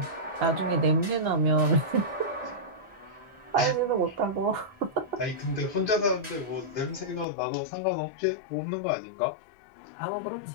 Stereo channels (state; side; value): drops out; right; at 7.2 s